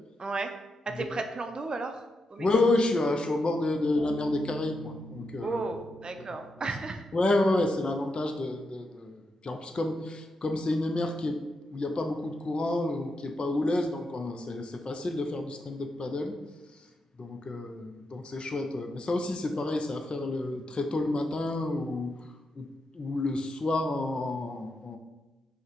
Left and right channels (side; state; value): both; normal; correlation 0.85